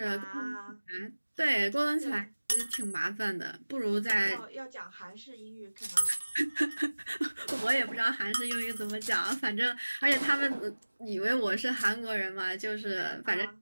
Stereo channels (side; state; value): both; inverted; correlation -1.00